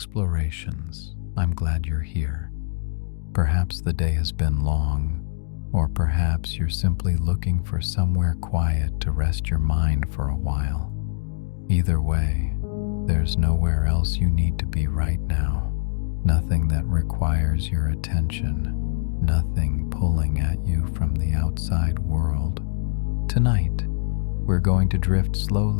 I'm glad you're here. Perhaps the day has been long, or perhaps you're simply looking for somewhere quiet to rest your mind for a while. Either way, there's nowhere else you need to be right now. Nothing that requires your attention, nothing pulling at you from the outside world. Tonight, we're going to drift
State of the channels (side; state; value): right; silent; digital silence